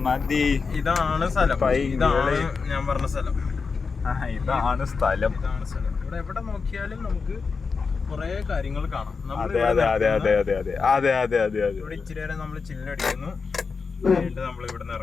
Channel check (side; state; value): right; quieter; 5.0 dB